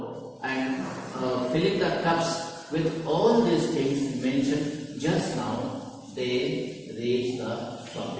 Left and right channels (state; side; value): identical; both; correlation 1.00